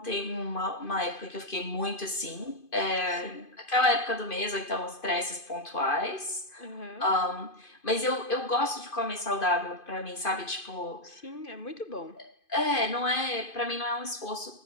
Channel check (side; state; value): right; late; 2.5 ms